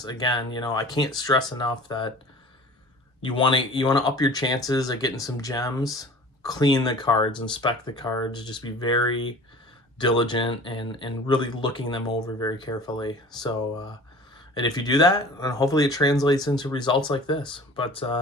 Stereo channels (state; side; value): normal; both; correlation 0.43